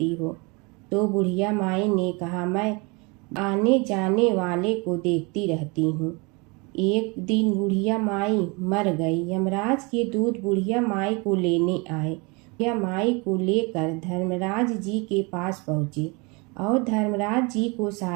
हो? तो बुढ़िया माई ने कहा, मैं आने जाने वाले को देखती रहती हूँ। एक दिन बुढ़िया माई मर गई। यमराज के दूत बुढ़िया माई को लेने आए। बुढ़िया माई को लेकर धर्मराज जी के पास पहुँचे और धर्मराज जी को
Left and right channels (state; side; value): quieter; left; 28.9 dB